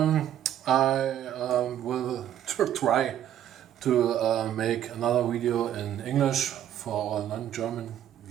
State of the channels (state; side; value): quieter; left; 11.0 dB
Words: will try to make another video in English for our non-German